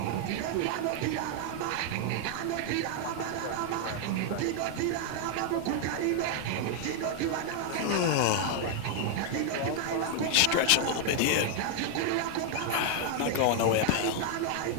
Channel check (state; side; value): different; both; correlation 0.00